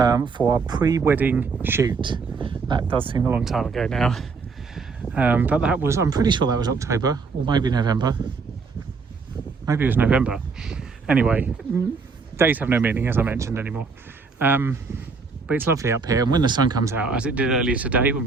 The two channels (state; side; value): quieter; left; 4.6 dB